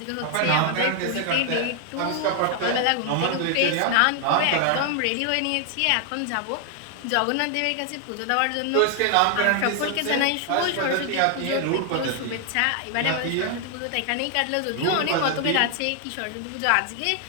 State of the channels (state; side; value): different; both; correlation 0.00